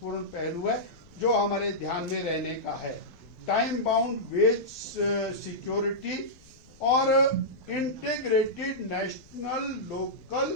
पहलू है जो हमारे ध्यान में रहने का है। टाइम बाउंड वेज सिक्योरिटी और इंटीग्रेटेड नेशनल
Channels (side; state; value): left; noise; rumble, 26 dB below the sound